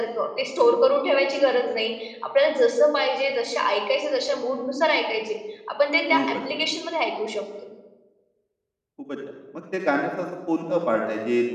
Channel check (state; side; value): identical; both; correlation 1.00